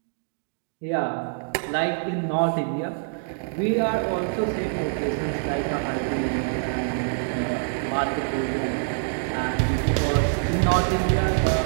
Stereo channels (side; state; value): left; silent; digital silence